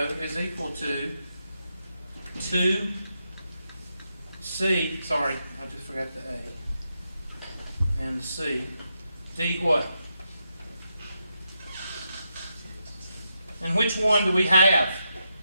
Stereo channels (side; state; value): both; inverted; correlation -0.84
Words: is equal to 2 C, sorry, I just forgot the A. And the C. D what? And which one do we have?